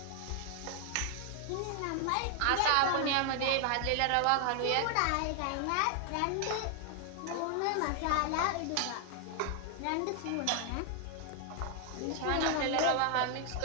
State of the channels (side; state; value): both; different; correlation 0.00